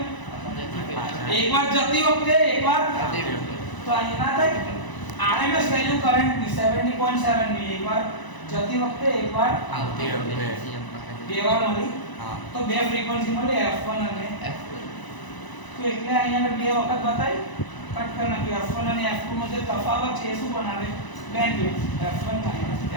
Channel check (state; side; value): late; right; 1.0 ms